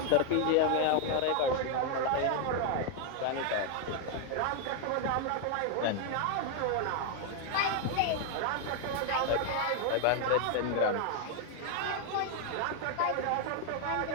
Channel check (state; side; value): different; both; correlation 0.00